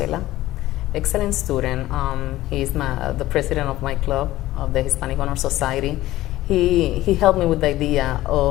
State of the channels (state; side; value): quieter; right; 15.9 dB